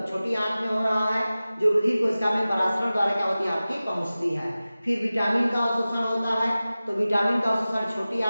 छोटी आंत में हो रहा है, जो रुधिर कोशिका में परासरण द्वारा क्या होती है आपकी पहुंचती है। फिर विटामिन का अवशोषण होता है। तो विटामिन का अवशोषण छोटी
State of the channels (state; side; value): inverted; both; correlation -0.96